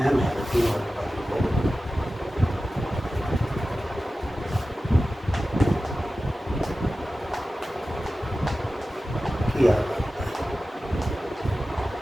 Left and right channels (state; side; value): normal; both; correlation 0.95